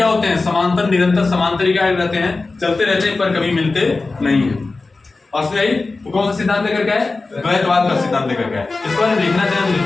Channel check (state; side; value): quieter; right; 3.6 dB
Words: होते हैं? समांतर, निरंतर समांतर क्या रहते हैं? चलते रहते हैं पर कभी मिलते नहीं है। बस नहीं, तो कौन सा सिद्धांत लेकर के आए? द्वैतवाद का सिद्धांत लेकर के आए। इसको अगर लिखना चाहें तो